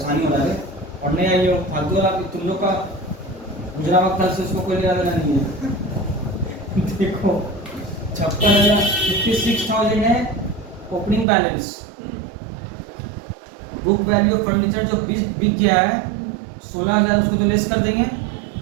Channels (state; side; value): drops out; left; at 11.2 s